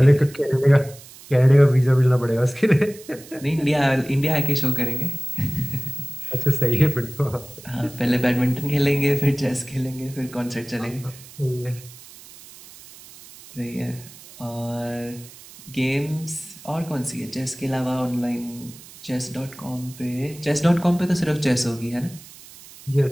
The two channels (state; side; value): noise; right; hiss, 19 dB below the sound